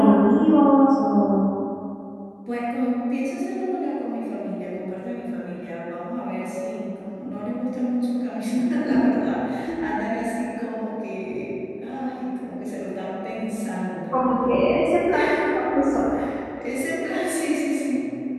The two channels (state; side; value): identical; both; correlation 1.00